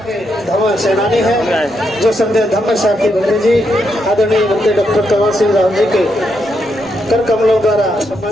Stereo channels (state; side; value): normal; both; correlation 0.80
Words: धम्म सेनानी है, जो संत धम्म साहब की बंधु जी आदरणीय मंत्री डॉक्टर कमल सिंह राव जी के कर कमलों द्वारा